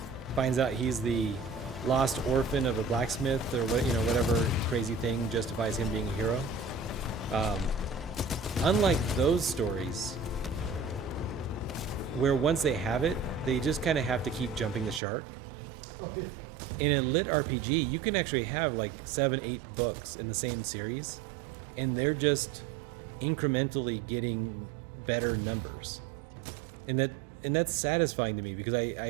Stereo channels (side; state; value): left; drops out; at 15.0 s